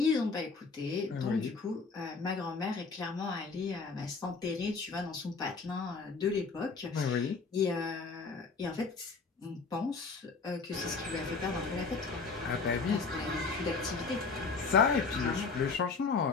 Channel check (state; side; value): quieter; right; 4.6 dB